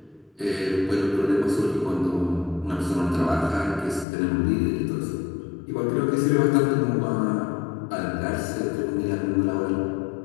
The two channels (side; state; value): right; drops out; at 4.0 s